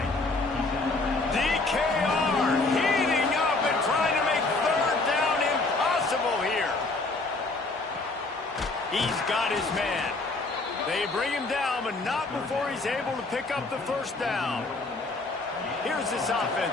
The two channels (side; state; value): right; quieter; 3.4 dB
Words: DKR heating up and trying to make 3rd down impossible here. He's got his man. They bring him down, but not before he's able to pick up the 1st down. Here's this